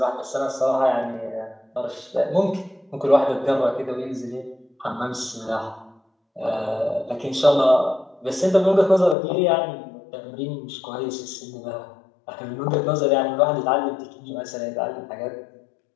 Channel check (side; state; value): right; drops out; at 9.2 s